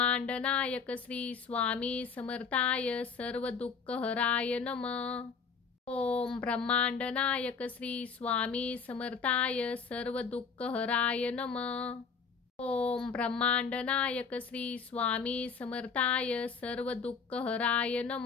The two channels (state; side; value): quieter; right; 5.6 dB